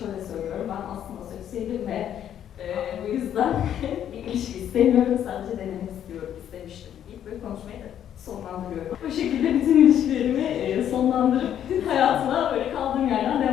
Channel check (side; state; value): right; quieter; 10.1 dB